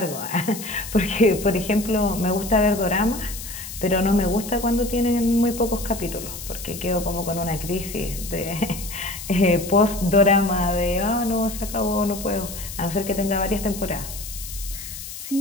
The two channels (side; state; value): left; noise; hiss, 10 dB below the sound